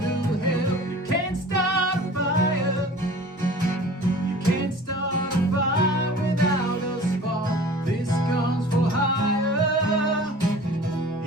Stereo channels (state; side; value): normal; both; correlation 0.44